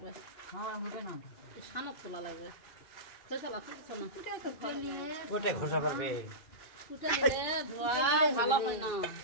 সানক তোলা লাগবে। ঘষা পারবে ভালো হয় না,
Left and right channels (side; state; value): right; late; 2.5 ms